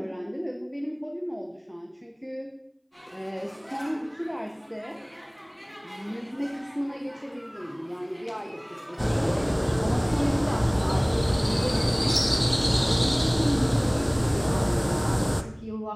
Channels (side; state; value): both; identical; correlation 1.00